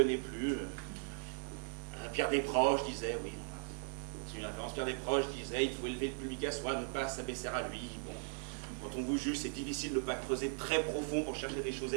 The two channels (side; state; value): left; silent; digital silence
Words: plus. Pierre Desproges disait, oui, c'est une référence, Pierre Desproges disait, il faut élever le public à soi, ne pas s'abaisser à lui. Bon, quand on vous juge, c'est difficile de ne pas creuser très profond pour chercher des choses